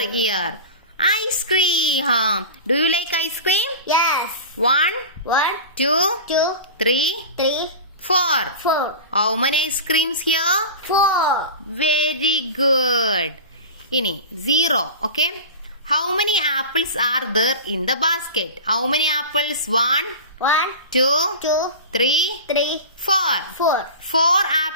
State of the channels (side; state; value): both; inverted; correlation -0.30